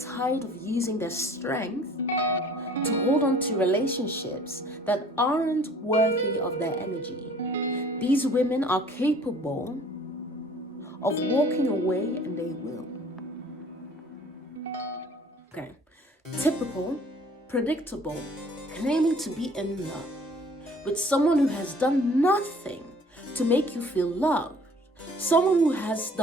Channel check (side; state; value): both; normal; correlation 0.52